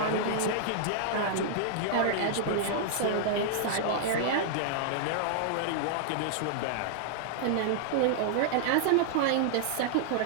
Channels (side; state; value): both; different; correlation -0.01